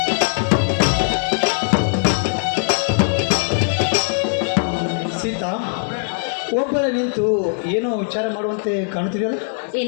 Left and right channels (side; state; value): right; silent; digital silence